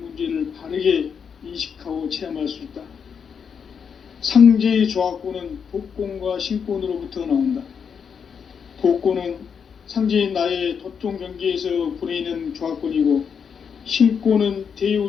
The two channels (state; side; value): quieter; right; 6.7 dB